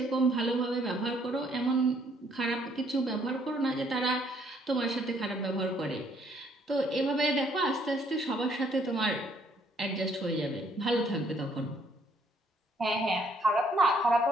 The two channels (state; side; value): normal; both; correlation 0.66